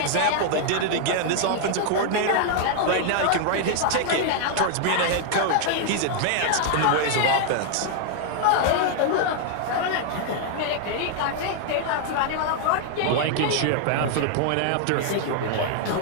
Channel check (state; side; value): different; both; correlation 0.00